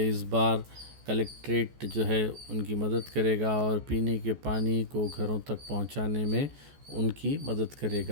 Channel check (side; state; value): left; late; 14 ms